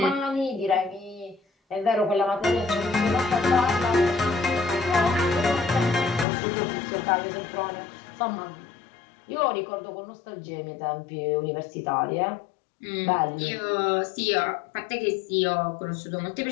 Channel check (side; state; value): right; drops out; at 6.2 s